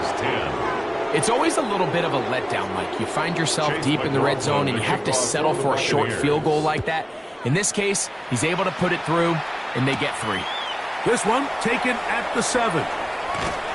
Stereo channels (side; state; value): both; identical; correlation 1.00